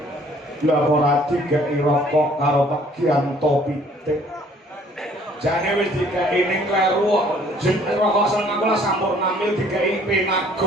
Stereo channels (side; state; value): both; normal; correlation 0.58